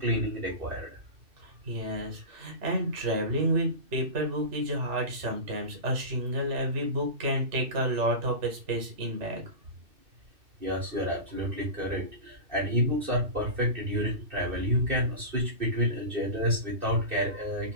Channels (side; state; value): left; late; 2.6 ms